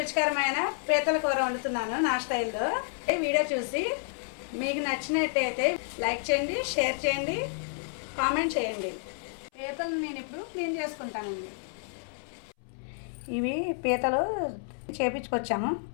పీతల కూర వండుతున్నాను నా స్టైల్లో. ఈ వీడియో చూసి మీకు నచ్చినట్టయితే లైక్ చేయండి, షేర్ చేయండి, కామెంట్ చేయండి. పీతలు నేను ఇప్పుడు క్లీన్ చేసుకుంటానండి. ఇవి పీతలు చేపించుకొచ్చాము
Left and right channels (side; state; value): right; silent; 58 dB below the other